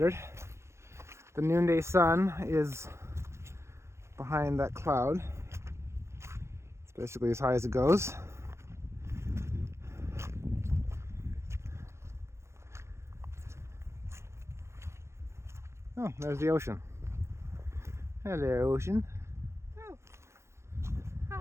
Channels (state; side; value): late; left; 0.13 ms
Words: The noonday sun is behind that cloud. It's basically as high as it goes. Oh, there's the ocean. Hello, ocean. Oh.